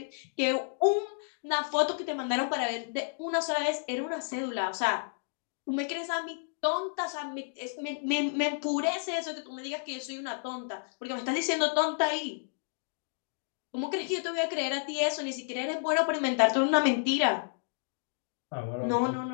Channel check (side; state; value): right; silent; digital silence